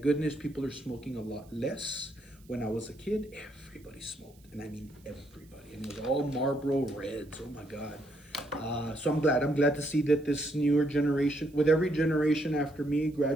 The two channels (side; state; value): right; noise; hiss, 30 dB below the sound